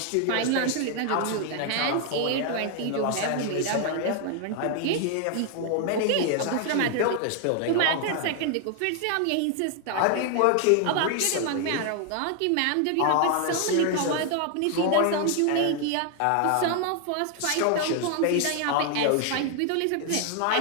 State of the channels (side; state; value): both; different; correlation 0.00